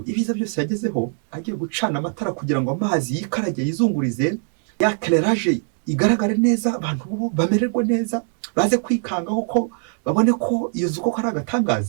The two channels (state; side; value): silent; left; 56 dB below the other